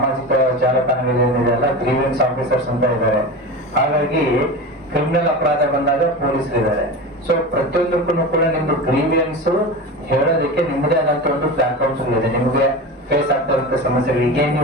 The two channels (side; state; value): both; normal; correlation 0.27